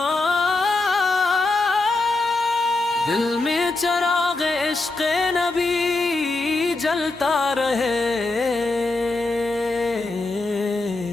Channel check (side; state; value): right; quieter; 3.2 dB